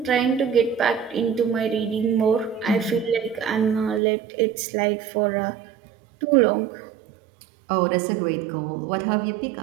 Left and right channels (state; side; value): drops out; left; at 4.0 s